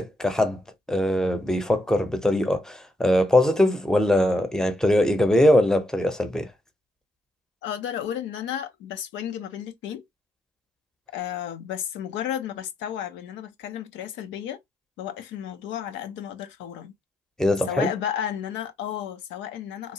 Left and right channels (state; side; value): normal; both; correlation 0.79